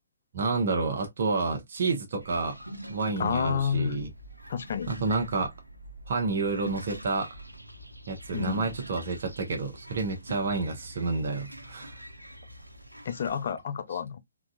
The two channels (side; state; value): both; inverted; correlation -0.55